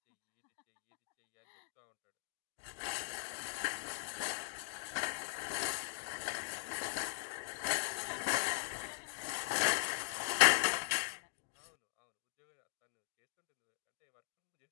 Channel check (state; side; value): silent; right; 51 dB below the other